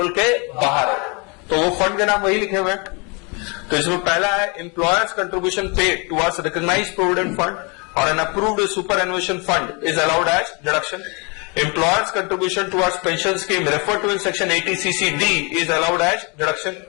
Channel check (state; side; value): quieter; right; 31.5 dB